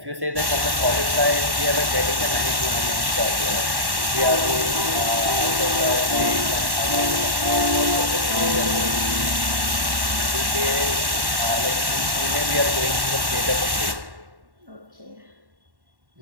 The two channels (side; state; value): left; late; 1.1 ms